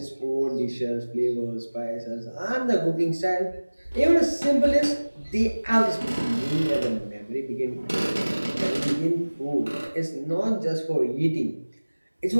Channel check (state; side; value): inverted; both; correlation -1.00